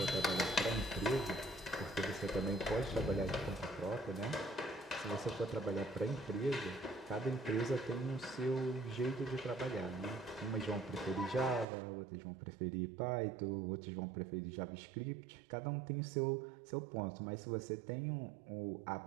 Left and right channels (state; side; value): drops out; left; at 11.7 s